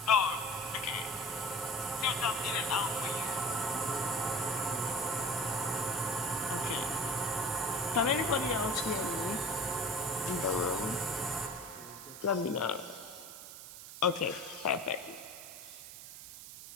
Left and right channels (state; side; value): noise; right; hiss, 13 dB below the sound